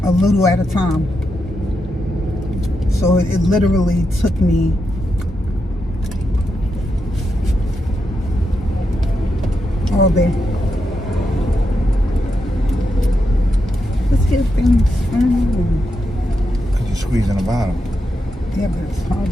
a little at a time. So it literally took me all day. Let's get things started. Because you're squeezing the bottom. Yeah, but it's hard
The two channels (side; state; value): both; normal; correlation 0.85